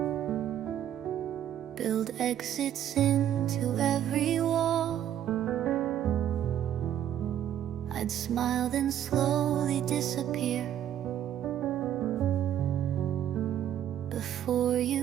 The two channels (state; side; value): quieter; left; 10.7 dB